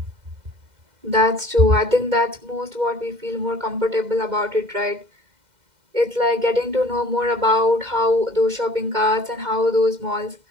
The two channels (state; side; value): late; left; 2.1 ms